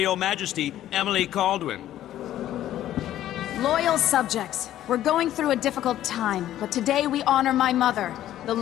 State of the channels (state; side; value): quieter; right; 12.7 dB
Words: Majesty, Emily Caldwin. Loyal subjects, we're going through a difficult time, but today we honor my mother, the